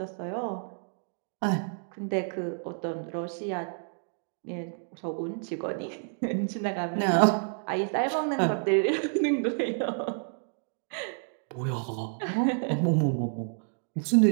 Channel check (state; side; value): silent; left; 58 dB below the other